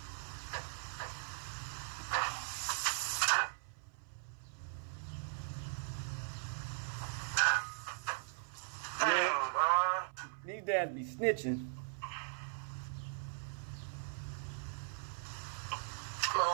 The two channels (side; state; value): left; silent; 51 dB below the other